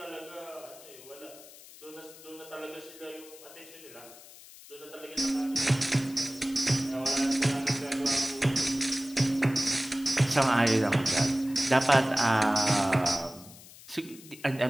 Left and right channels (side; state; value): left; noise; hiss, 19 dB below the sound